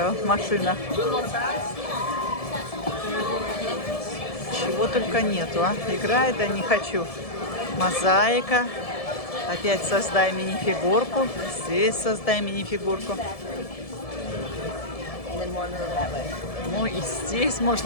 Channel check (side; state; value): right; late; 1.7 ms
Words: машина. Чего только нету, а? Играет, да не хочу. Мозаика. Опять создай мини-фигурку. Здесь создай мини-фигурку. Ну и здесь